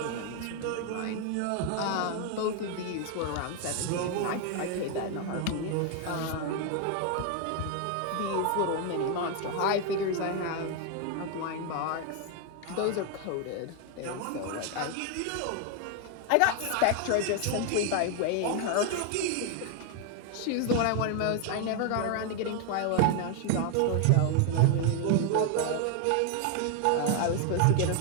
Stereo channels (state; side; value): different; both; correlation 0.00